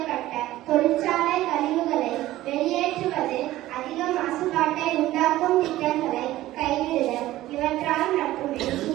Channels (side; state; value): left; quieter; 15.7 dB